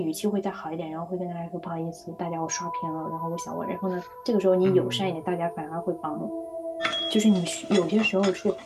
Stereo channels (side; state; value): both; identical; correlation 1.00